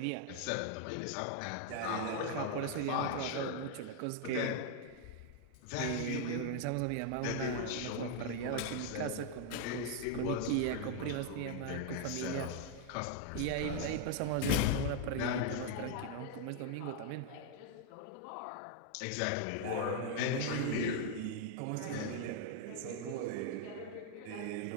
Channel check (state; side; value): different; both; correlation 0.00